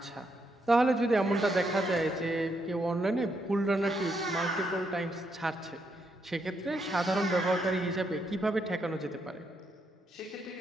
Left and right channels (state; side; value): normal; both; correlation 0.78